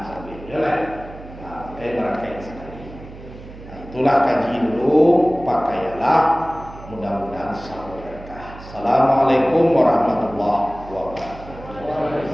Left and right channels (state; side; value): noise; right; hum, 16 dB below the sound